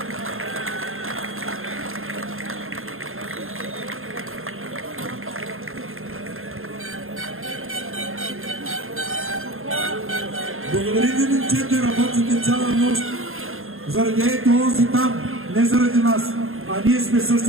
Благодарим ви, момчета, работите цяла нощ. Заради ето онзи там, не заради нас, а ние сме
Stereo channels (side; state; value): left; late; 0.61 ms